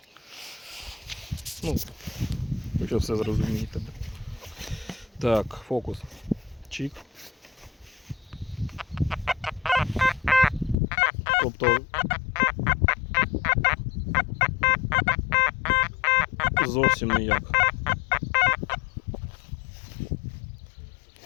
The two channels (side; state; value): right; drops out; at 10.8 s